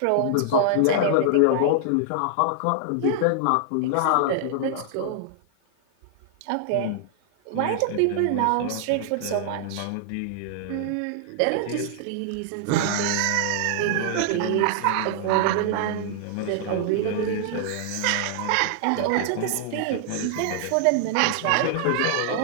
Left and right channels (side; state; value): both; different; correlation -0.01